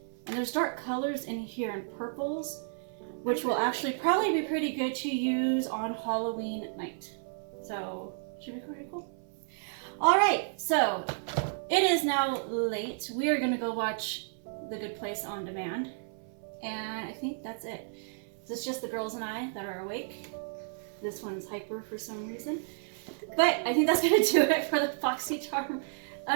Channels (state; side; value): silent; left; 57 dB below the other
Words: And there's dark colors in here and purples, which will actually probably be pretty good to use on Halloween night. So, should be pretty cool. All right, so it is now late. We are gonna go watch The Good Place on demand. And I think that's it. So it's just the girls and I that are awake. This one's hyper for some reason. But I think that's gonna do it for the Boxycharm